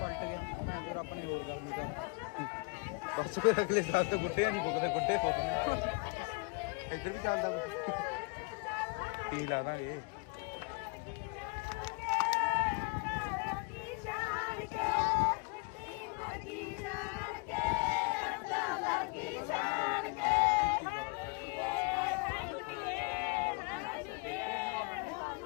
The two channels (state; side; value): quieter; right; 30.8 dB